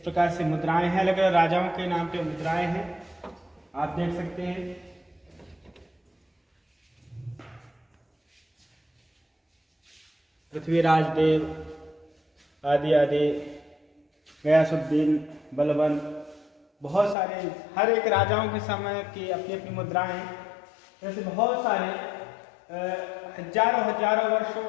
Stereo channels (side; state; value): right; drops out; at 17.2 s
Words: से मुद्राएं हैं, अलग अलग राजाओं के नाम पे मुद्राएं हैं, आप देख सकते हैं। पृथ्वीराज देव आदि आदि, गयासुद्दीन, बलबन, बहुत सारे हर एक राजाओं के समय की अपनी अपनी मुद्राएं हैं। जैसे बहुत सारे हजारों वर्ष